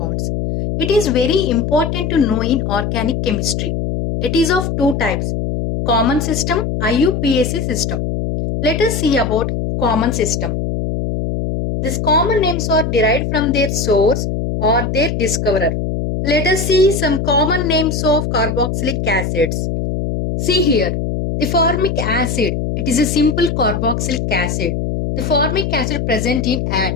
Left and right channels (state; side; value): noise; left; hum, 2 dB below the sound